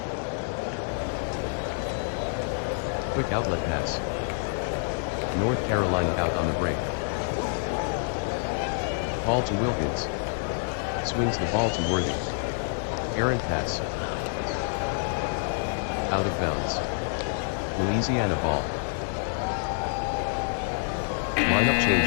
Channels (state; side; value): silent; right; digital silence